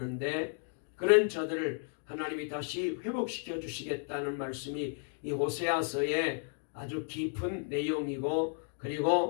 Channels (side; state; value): right; silent; 55 dB below the other